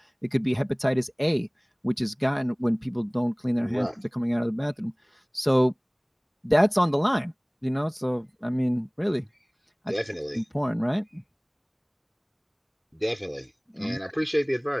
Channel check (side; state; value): both; identical; correlation 1.00